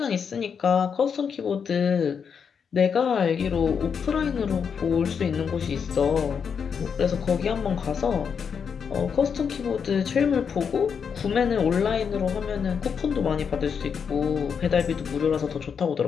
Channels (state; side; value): quieter; right; 6.7 dB